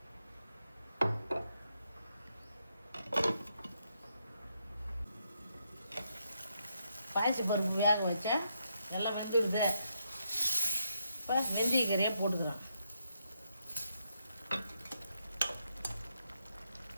பாசி பருப்பு வேக வச்சேன், எல்லாம் வெந்துடுது. இப்போ வெந்தயக்கீரையை போட்டுக்கிறேன்.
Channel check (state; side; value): inverted; both; correlation -0.79